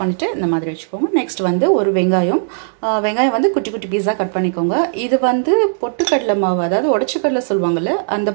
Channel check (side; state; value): left; silent; digital silence